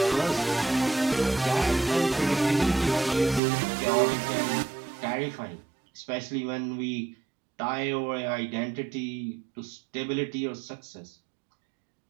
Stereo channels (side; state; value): left; drops out; at 3.4 s